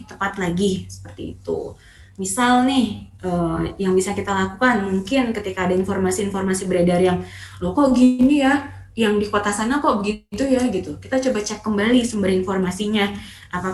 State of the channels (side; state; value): both; identical; correlation 1.00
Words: tepat lagi, seperti itu. Misal nih, yang bisa kita lakukan mungkin ketika ada informasi-informasi beredar yang loh kok gini ya, yang di kota sana kok begitu ya gitu. Kita coba cek kembali sumber informasinya.